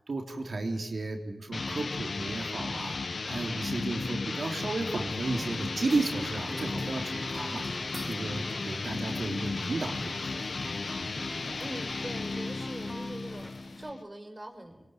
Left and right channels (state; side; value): normal; both; correlation 0.93